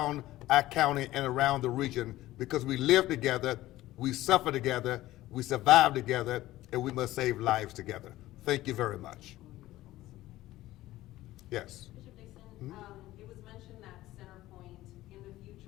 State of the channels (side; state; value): right; quieter; 16.1 dB